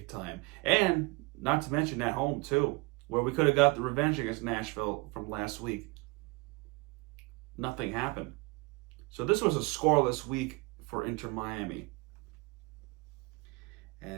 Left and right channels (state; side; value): quieter; left; 26.3 dB